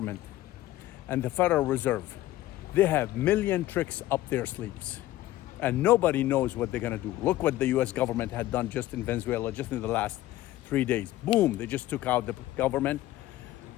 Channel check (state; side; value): quieter; right; 15.3 dB